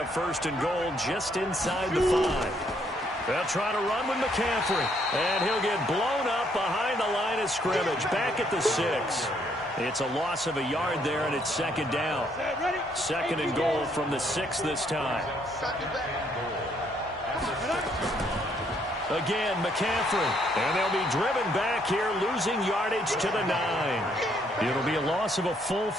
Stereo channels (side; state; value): both; normal; correlation 0.70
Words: 1st and goal just inside the 5. They'll try to run with McCaffrey, and he'll get blown up behind the line of scrimmage, back at the 6. It's a loss of a yard there, and it's 2nd down. 2nd and goal from the 6 this time. Again, McCaffrey, and they'll be driven back here, losing yardage to the 9. It'll be a loss of a full